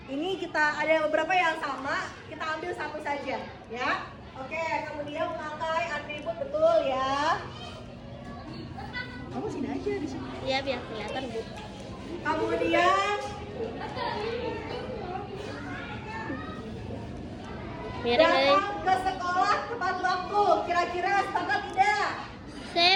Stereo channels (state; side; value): identical; both; correlation 1.00